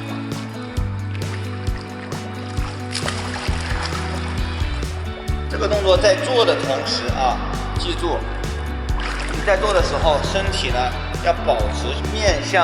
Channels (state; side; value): identical; both; correlation 1.00